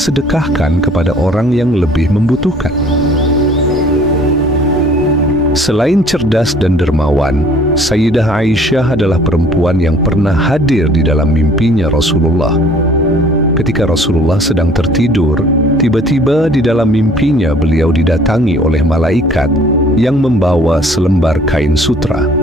sedekahkan kepada orang yang lebih membutuhkan. Selain cerdas dan dermawan, Sayyidah Aisyah adalah perempuan yang pernah hadir di dalam mimpinya Rasulullah. Ketika Rasulullah sedang tertidur, tiba-tiba di dalam mimpinya beliau didatangi oleh malaikat yang membawa selembar kain sutra.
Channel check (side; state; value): both; normal; correlation 0.54